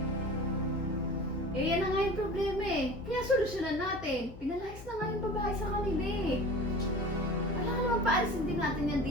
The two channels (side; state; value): left; noise; hum, 16 dB below the sound